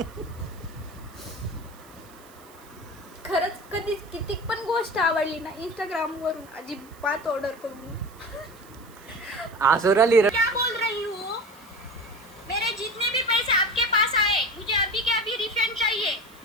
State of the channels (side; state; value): right; noise; hiss, 25 dB below the sound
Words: खरंच कधीच किती पण गोष्ट आवडली ना इंस्टाग्राम वरून अजिबात ऑर्डर करून. आसुराली क्या बोल रही हूँ? मेरे जितने भी पैसे आपके पास आए मुझे अभी के अभी रिफंड चाहिए.